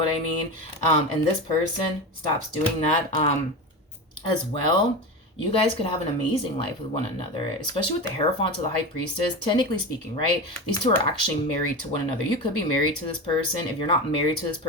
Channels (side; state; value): both; normal; correlation 0.24